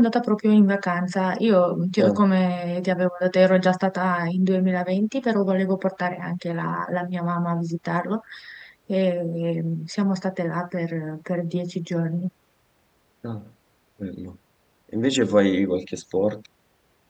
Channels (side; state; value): both; identical; correlation 1.00